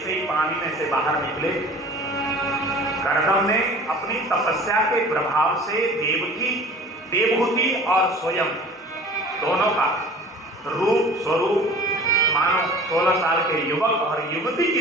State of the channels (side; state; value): both; normal; correlation 0.44